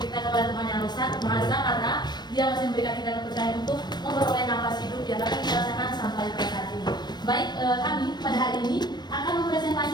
kita kepada Tuhan Yang Maha Esa karena Dia masih memberikan kita kepercayaan untuk memperoleh nafas hidup yang dapat kita rasakan sampai pada saat ini. Baik, kami pada hari ini akan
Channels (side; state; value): right; late; 0.21 ms